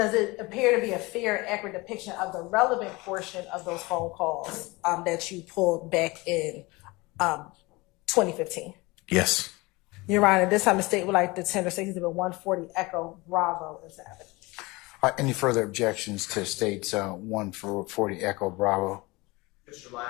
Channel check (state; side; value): quieter; right; 23.3 dB